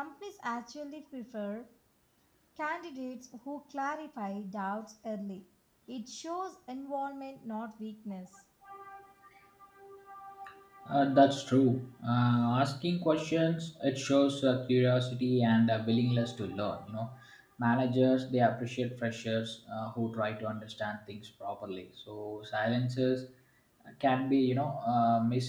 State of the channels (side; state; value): both; identical; correlation 1.00